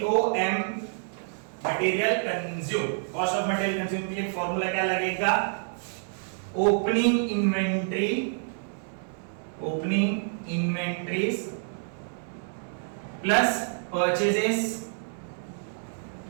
material consume. Cost of material consume के लिए फॉर्मूला क्या लगेगा? Opening inventories plus purchases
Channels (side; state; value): left; silent; 59 dB below the other